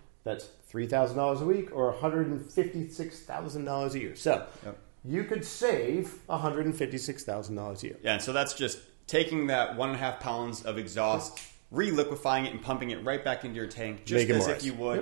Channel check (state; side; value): silent; left; digital silence